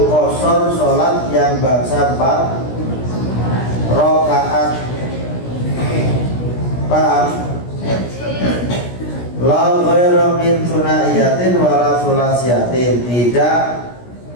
sholat yang bangsa 4 rakaat. Paham? La ghairu min thunaiyatin wala thulasiyatin. Tidak,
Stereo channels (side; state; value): right; late; 17 ms